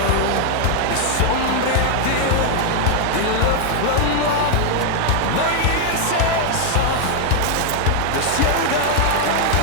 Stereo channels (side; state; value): both; different; correlation 0.00